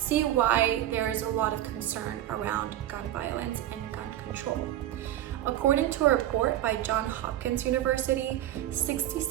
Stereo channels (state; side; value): quieter; left; 12.8 dB